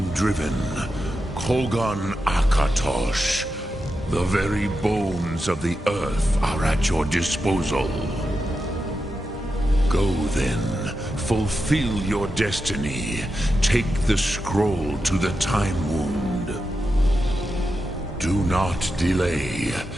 Kogan Akatosh. The very bones of the earth are at your disposal. Go then. Fulfill your destiny. Take the scroll to the Time Wound. Do not delay.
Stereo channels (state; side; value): normal; both; correlation 0.89